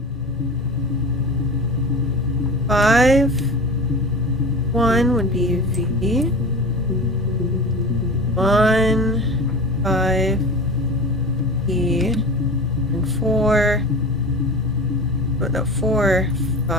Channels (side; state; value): both; normal; correlation 0.33